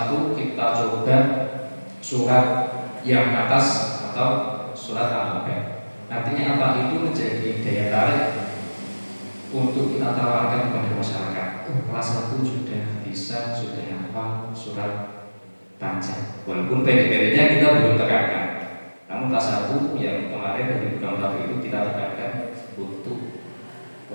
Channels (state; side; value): inverted; both; correlation -1.00